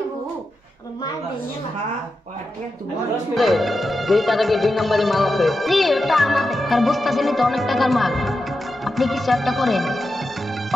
তার বুঝতেছেন তো অনেক টাকার মাল, আপনি কিছু একটা করেন।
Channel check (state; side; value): normal; both; correlation 0.89